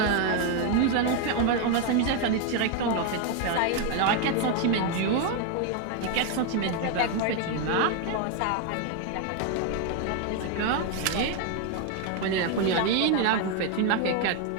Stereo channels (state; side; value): different; both; correlation 0.01